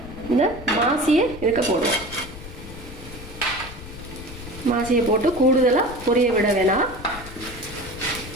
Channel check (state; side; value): noise; left; rumble, 14 dB below the sound